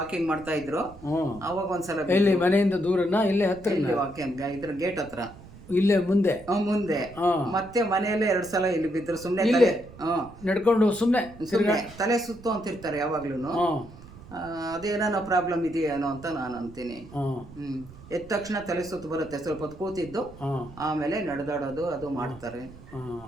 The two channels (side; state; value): right; noise; rumble, 19 dB below the sound